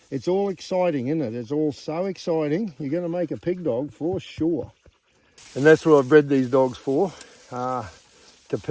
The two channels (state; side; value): identical; both; correlation 1.00